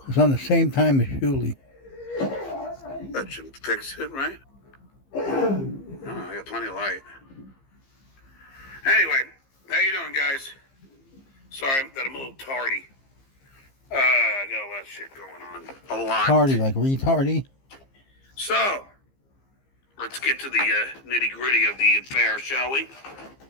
It's on the same time as Shuli. that should fix it, right? Oh, I got plenty of light. Anyway, how you doing, guys? Sorry that I'm a little tardy. I got a lot of shit going on. A lot. Tardy, like retardy. So, let's get to the nitty gritty of the affair, shall we?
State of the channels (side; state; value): right; late; 15 ms